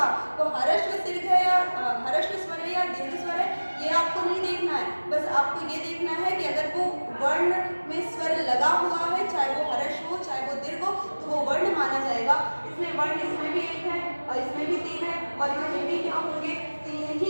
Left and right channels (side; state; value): both; inverted; correlation -1.00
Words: वो हर्ष दीर्घ है या हर्ष स्वर है या दीर्घ स्वर है, ये आपको नहीं देखना है। बस आपको ये देखना है कि अगर वो वर्ण में स्वर लगा हुआ है, चाहे वो हर्ष हो चाहे वो दीर्घ हो, तो वो वर्ण माना जाएगा। इसमें वर्ण इसमें भी एक है और इसमें भी 3 है और इसमें भी क्या होंगे, 3